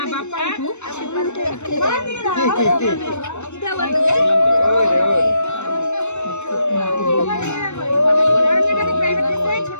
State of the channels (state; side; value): late; right; 0.82 ms